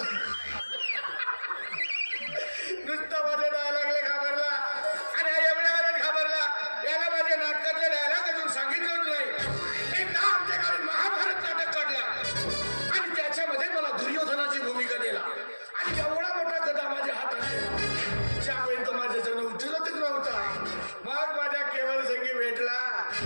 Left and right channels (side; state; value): both; inverted; correlation -1.00